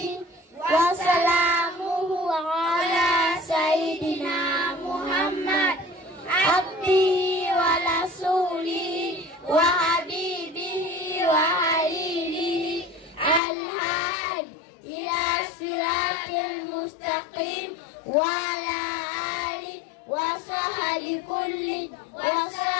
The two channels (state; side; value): drops out; right; at 13.4 s